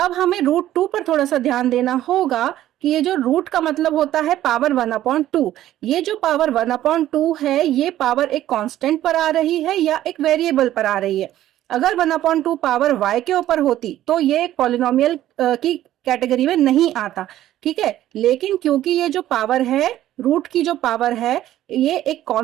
हमें √2 पर थोड़ा सा ध्यान देना होगा कि ये जो रूट का मतलब होता है पावर 1/2. ये जो पावर 1/2 है ये पावर एक कांस्टेंट पर आ रही है या एक वेरिएबल पर आ रही है. अगर 1/2 पावर y के ऊपर होती तो ये एक पॉलिनोमियल की कैटेगरी में नहीं आता. ठीक है, लेकिन क्योंकि ये जो पावर है, रूट की जो पावर है, ये एक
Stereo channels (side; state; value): left; quieter; 13.2 dB